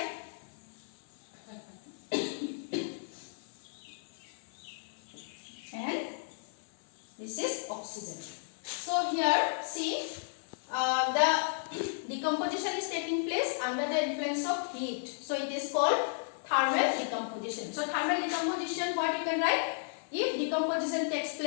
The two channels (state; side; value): silent; right; 55 dB below the other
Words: and this is oxygen. So here see the decomposition is taking place under the influence of heat. So it is called thermal decomposition. So thermal decomposition, what you can write? If decomposition takes